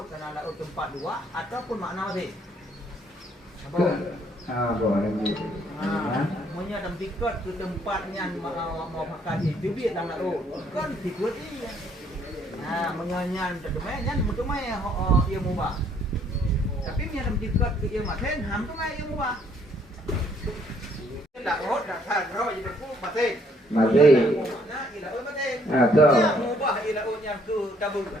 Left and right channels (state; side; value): normal; both; correlation 0.66